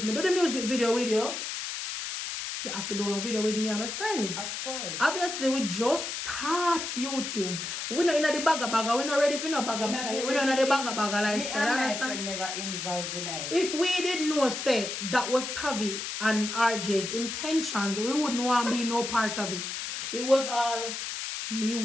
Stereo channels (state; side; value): noise; left; hiss, 5 dB below the sound